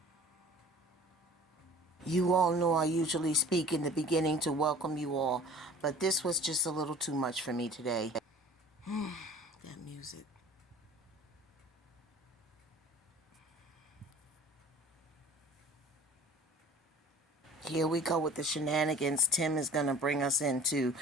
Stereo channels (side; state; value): both; normal; correlation 0.46